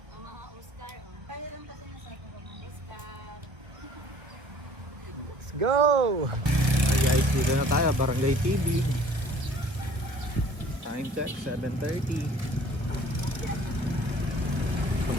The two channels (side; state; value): left; late; 1.1 ms